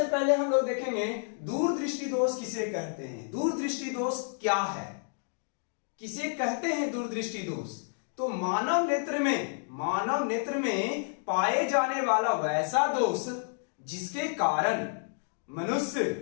पहले हम लोग देखेंगे दूरदृष्टि दोष किसे कहते हैं। दूरदृष्टि दोष क्या है, किसे कहते हैं दूरदृष्टि दोष? तो मानव नेत्र में पाए जाने वाला वैसा दोष जिसके कारण मनुष्य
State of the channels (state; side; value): silent; right; 58 dB below the other